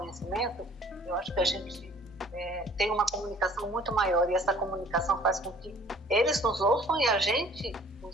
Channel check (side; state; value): both; normal; correlation 0.53